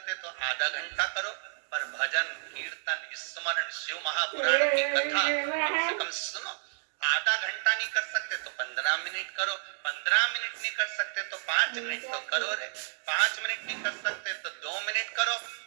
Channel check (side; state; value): left; silent; digital silence